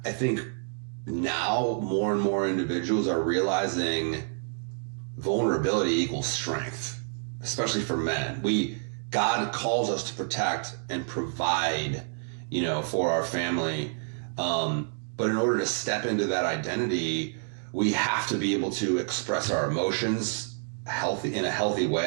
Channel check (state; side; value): silent; left; digital silence